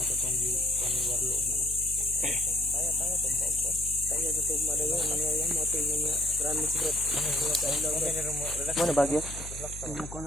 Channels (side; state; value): left; noise; hum, 11 dB below the sound